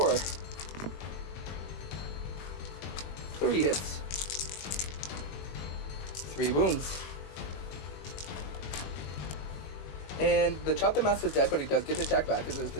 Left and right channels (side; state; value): right; late; 21 ms